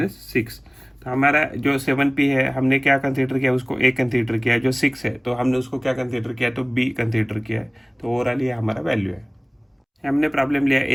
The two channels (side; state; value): both; identical; correlation 1.00